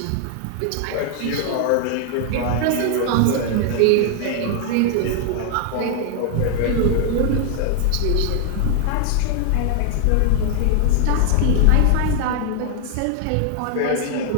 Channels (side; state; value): both; different; correlation 0.00